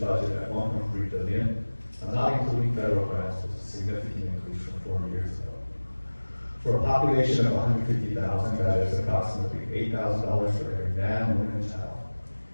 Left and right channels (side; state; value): both; inverted; correlation -1.00